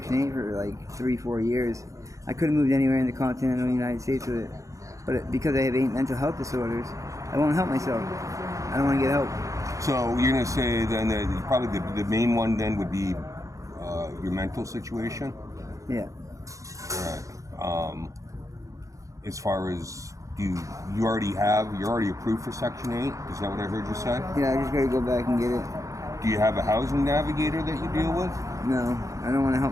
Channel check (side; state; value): left; late; 0.16 ms